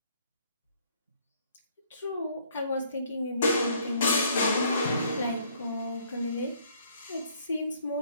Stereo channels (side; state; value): both; inverted; correlation -0.63